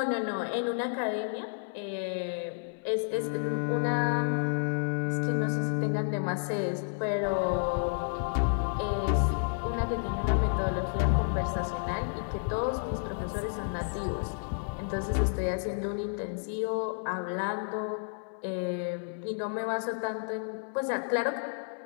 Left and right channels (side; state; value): right; silent; digital silence